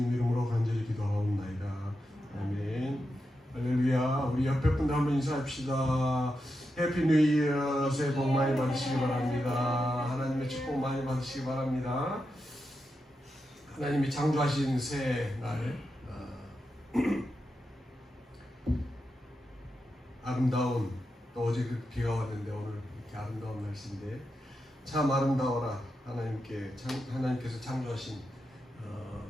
이름으로 간절히 기도하옵나이다. 아멘. 할렐루야. 우리 옆에 분들 한번 인사합시다. 해피 뉴 이어. 새해 복 많이 받으시기 바랍니다. 하나님의 축복 많이 받으시기 바랍니다. 하나님이 창조하신 새해 날 아름다운, 또 어제 비가 왔는데 오늘 이렇게 아름다운 날씨인데 참 아름다워라. 하나님께서 창조하신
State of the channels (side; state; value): both; normal; correlation 0.87